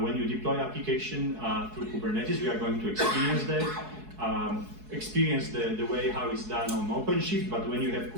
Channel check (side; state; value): left; late; 4.7 ms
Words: you deploy application through Kubernetes, we are going to experience that. Experience the way how it's done on OpenShift, but when you have